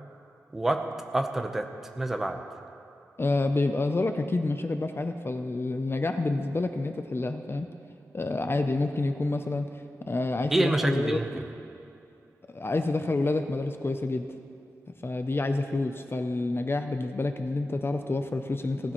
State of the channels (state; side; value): normal; both; correlation 0.93